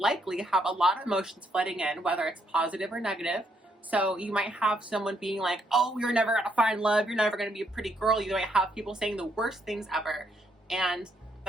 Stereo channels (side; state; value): both; normal; correlation 0.74